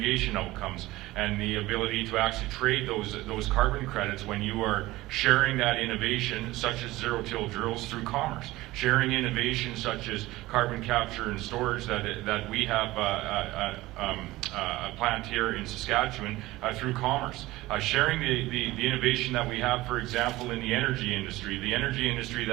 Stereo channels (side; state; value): left; quieter; 18.4 dB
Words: outcomes. and the ability to actually trade those carbon credits when you are sharing that innovation, such as zero-till drills, through commerce. Sharing innovation such as carbon capture and storage that we have a plant here in Saskatchewan through commerce. Sharing the innovation that we have, for example, in the energy industry. The energy industry